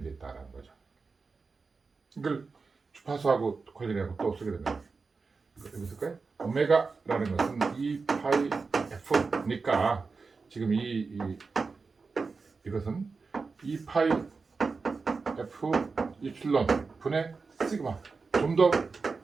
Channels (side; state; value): left; quieter; 4.5 dB